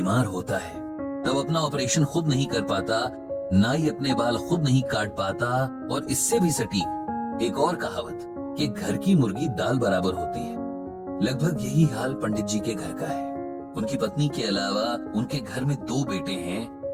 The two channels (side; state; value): both; identical; correlation 1.00